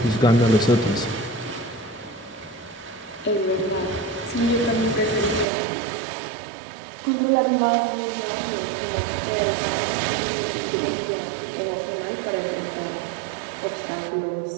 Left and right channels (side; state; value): left; drops out; at 5.5 s